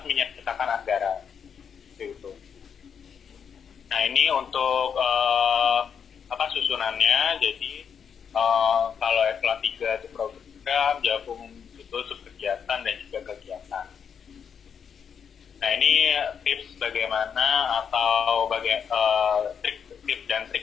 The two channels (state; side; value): quieter; right; 7.2 dB